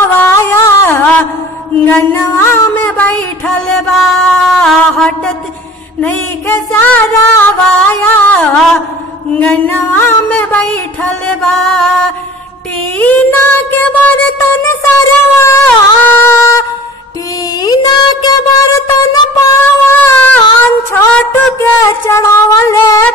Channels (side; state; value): both; normal; correlation 0.44